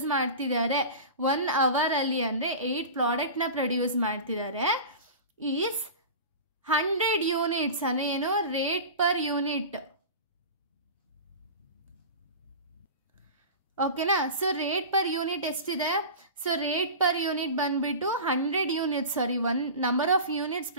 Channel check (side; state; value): both; inverted; correlation -0.32